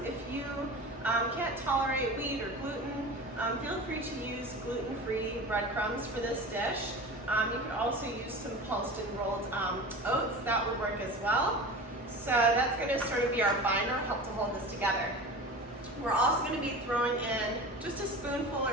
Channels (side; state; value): both; normal; correlation 0.33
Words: If you can't tolerate wheat or gluten, feel free to use gluten-free breadcrumbs for this dish. You can also use some pulsed and rolled oats. That would work as well. So that's going to sort of be our binder, help to hold this together. We're also going to be throwing in just a spoonful